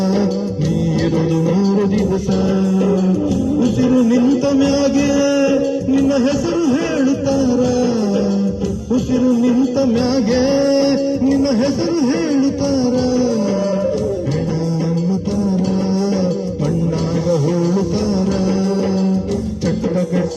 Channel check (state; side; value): identical; both; correlation 1.00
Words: ನೀರಲು 3 ದಿವಸ. ಉಸಿರು ನಿಂತ ಮ್ಯಾಗೆ ನಿನ್ನ ಹೆಸರು ಹೇಳುತ್ತಾರ, ಉಸಿರು ನಿಂತ ಮ್ಯಾಗೆ ನಿನ್ನ ಹೆಸರು ಹೇಳುತ್ತಾರ. ಹೆಣ ಅನ್ನುತ್ತಾರ, ಮಣ್ಣಾಗ ಹೋಳುತ್ತಾರ, ಚಟ್ಟ